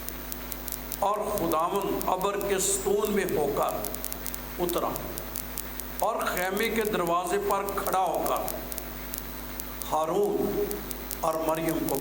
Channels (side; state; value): both; identical; correlation 1.00